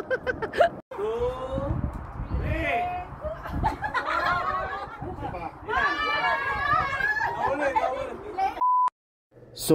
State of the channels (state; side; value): identical; both; correlation 1.00